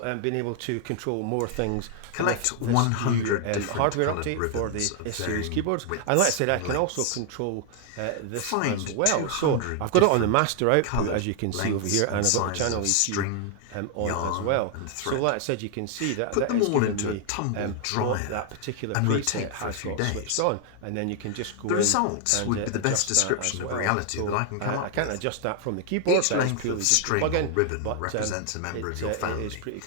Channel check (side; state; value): both; different; correlation 0.00